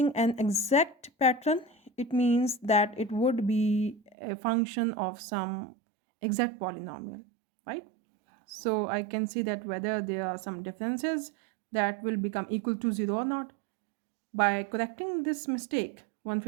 an exact pattern, it means that it would be a function of some exact polynomial, right? So I can see that whether there are some differences that will become equal to 0 or not. By correcting this mistake,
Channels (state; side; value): drops out; left; at 4.2 s